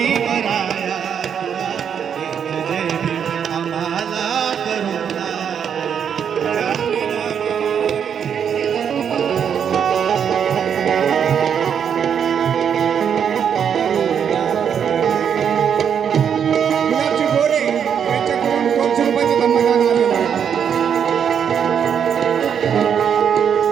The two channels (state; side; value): quieter; left; 7.9 dB